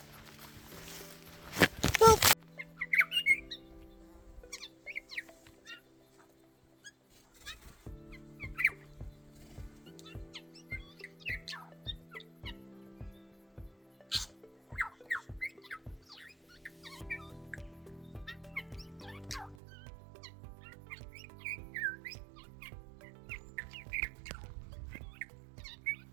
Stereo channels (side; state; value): left; drops out; at 19.6 s